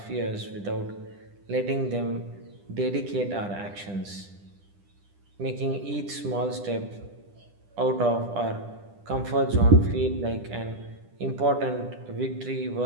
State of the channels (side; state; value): left; late; 10 ms